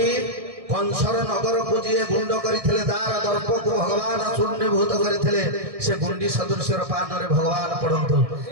कंसर नगर को जी गुंड करथिले दार दर्प को भगवान चूर्णीभूत करथिले से गुंडी सदृश्य पान रे भगवान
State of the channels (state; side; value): late; left; 1.6 ms